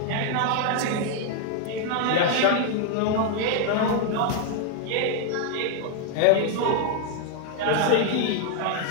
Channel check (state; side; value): different; both; correlation 0.00